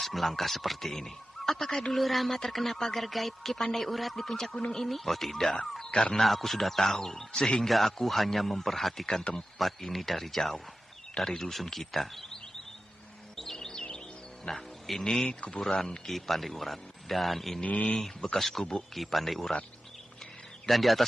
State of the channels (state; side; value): normal; both; correlation 0.93